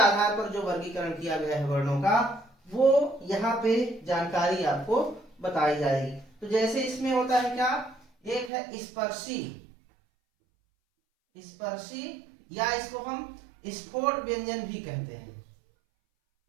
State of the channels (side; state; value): left; drops out; at 8.5 s